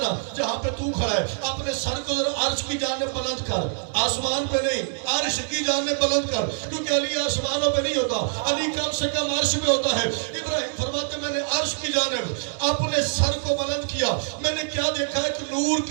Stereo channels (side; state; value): left; silent; digital silence